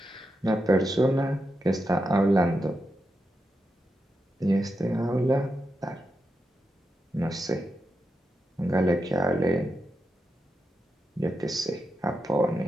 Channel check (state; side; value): normal; both; correlation 0.87